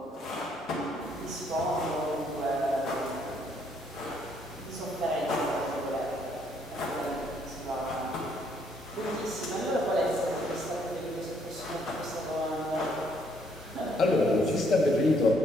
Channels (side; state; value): both; normal; correlation 0.69